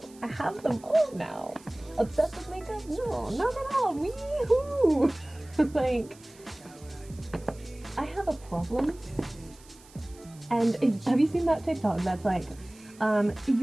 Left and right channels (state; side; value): noise; right; hiss, 24 dB below the sound